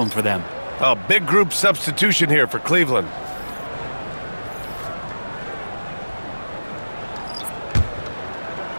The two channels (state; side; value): inverted; both; correlation -1.00